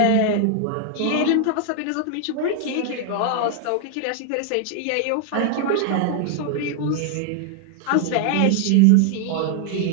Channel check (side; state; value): both; different; correlation 0.00